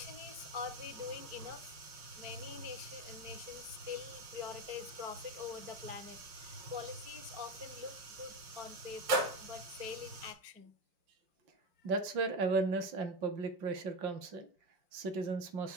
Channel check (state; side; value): late; left; 5.4 ms